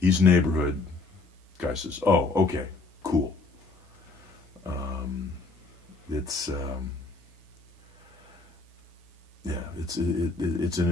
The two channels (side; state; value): right; quieter; 3.7 dB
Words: neighborhood. Guy says, oh, okay, cool. It's an